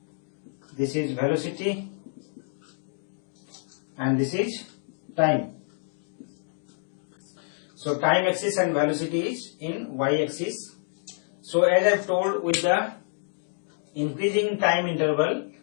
this is velocity, and this is time. So time axis and velocity is in y-axis. So as I have told, with the increasing time interval,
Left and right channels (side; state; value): right; silent; digital silence